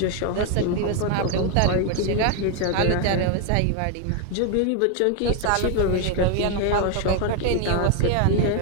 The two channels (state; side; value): different; both; correlation 0.01